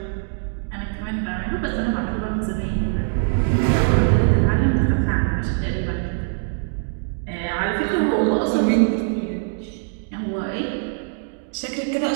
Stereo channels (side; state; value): left; silent; digital silence